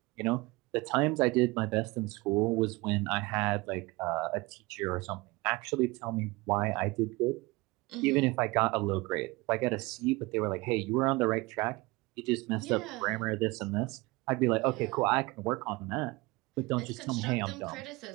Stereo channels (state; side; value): quieter; left; 23.2 dB